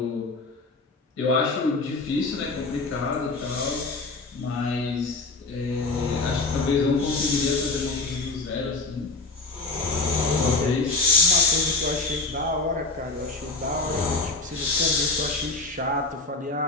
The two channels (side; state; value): right; quieter; 3.5 dB